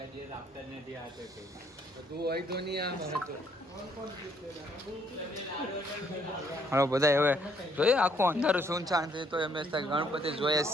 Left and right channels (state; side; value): normal; both; correlation 0.67